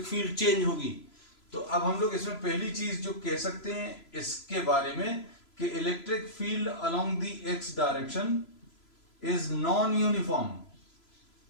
फील्ड चेंज होगी. तो अब हम लोग इसमें पहली चीज जो कह सकते हैं इसके बारे में कि electric field along the x direction is non uniform.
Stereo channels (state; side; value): late; right; 3.0 ms